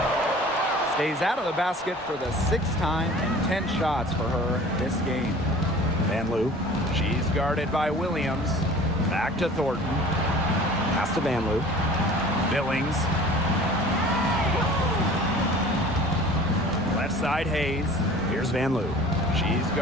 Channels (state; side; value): normal; both; correlation 0.45